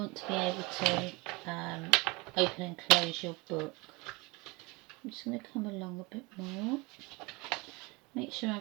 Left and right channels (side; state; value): left; quieter; 25.9 dB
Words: to be able to open and close your book. I'm just going to come along a bit more. Make sure